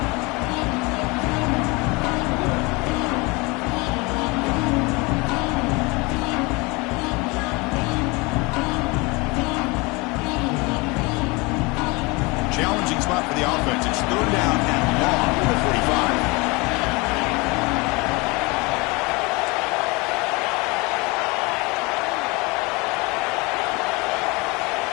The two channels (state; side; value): quieter; right; 26.1 dB